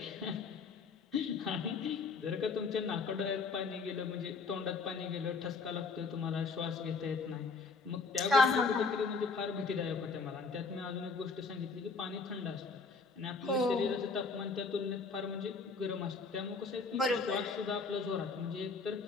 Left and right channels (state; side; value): quieter; right; 4.4 dB